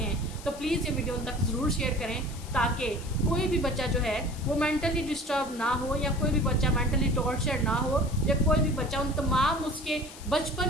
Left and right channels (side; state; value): left; noise; hiss, 17 dB below the sound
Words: तो प्लीज़ ये वीडियो उन तक ज़रूर शेयर करें ताकि कोई भी बच्चा जो है वो मेंटली डिस्टर्ब ना हो, या कोई भी बच्चा मेंटली टॉर्चर ना हो, या कोई भी बच्चा उन तमाम उसके